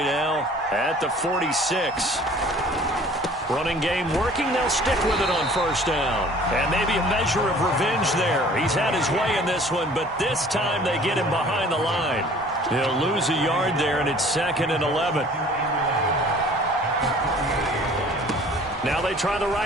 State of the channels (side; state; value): both; normal; correlation 0.50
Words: now at the 46. Running game working. They'll stick with it on first down. And maybe a measure of revenge there. He's had his way in this one, but this time they get him behind the line. He'll lose a yard there, and it's 2nd and 11. Now they try the